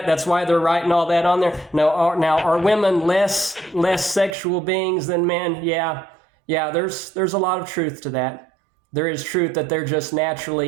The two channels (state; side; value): drops out; left; at 4.4 s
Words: That's why they're writing all that on there. Now, are women less sexual beings than men? Yeah. There's a lot of truth to that. There is truth that they're just